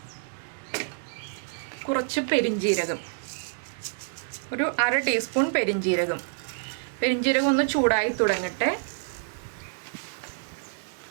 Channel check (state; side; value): silent; left; digital silence